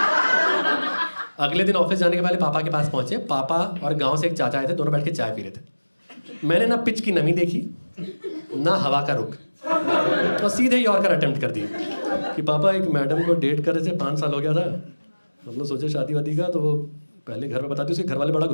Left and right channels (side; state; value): both; inverted; correlation -1.00